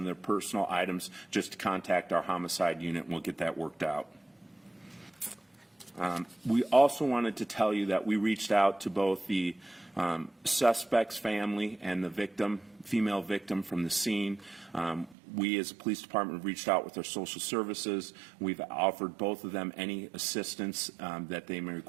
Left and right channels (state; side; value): drops out; left; at 15.2 s